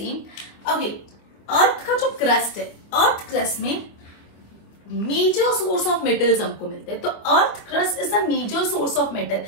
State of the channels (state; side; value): late; right; 25 ms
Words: Okay, अर्थ का जो crust है, अर्थ क्रस्ट में मेजर सोर्स ऑफ मेटल्स हमको मिलते हैं. तो earth crust is the major source of metal.